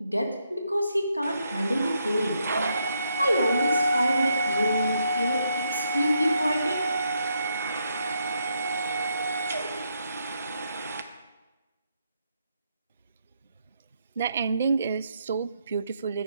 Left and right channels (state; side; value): inverted; both; correlation -0.78